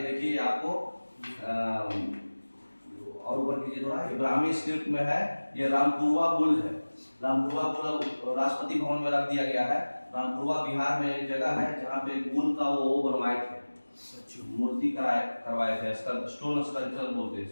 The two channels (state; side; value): inverted; both; correlation -1.00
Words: देखिए आपको और ऊपर कीजिए थोड़ा, इब्राहिमी स्क्रिप्ट में है, ये रामपुरवा बुल है। रामपुरवा बुल राष्ट्रपति भवन में रख दिया गया है। रामपुरवा बिहार में एक जगह है जहाँ पे बुल का वो बनवाए थे, मूर्ति करवाए थे, स्टोन स्कल्पचर बोलते हैं